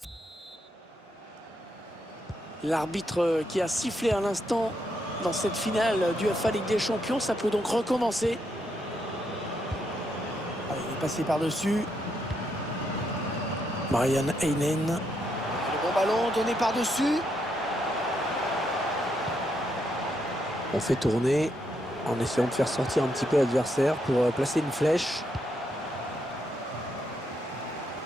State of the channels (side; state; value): both; normal; correlation 0.79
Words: L'arbitre qui a sifflé à l'instant dans cette finale du UEFA Ligue des Champions, ça peut donc recommencer. Allez, il est passé par-dessus. Marian Heinen. Le bon ballon donné par-dessus. On fait tourner en essayant de faire sortir un petit peu l'adversaire pour placer une flèche.